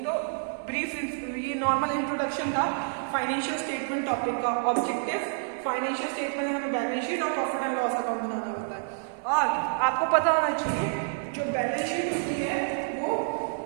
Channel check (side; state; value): left; silent; 59 dB below the other